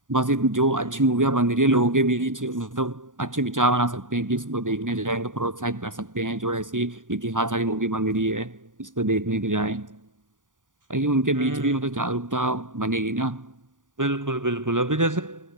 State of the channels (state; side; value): late; left; 0.88 ms